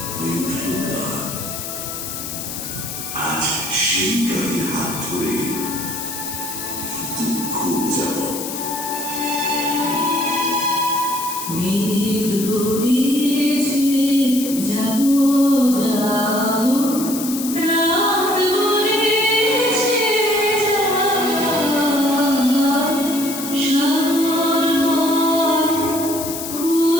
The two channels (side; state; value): left; noise; hiss, 7 dB below the sound